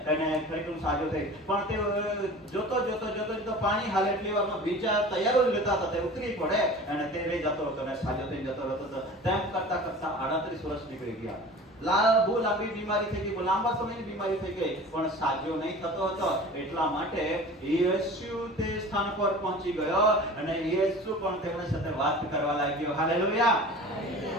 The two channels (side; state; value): both; normal; correlation 0.40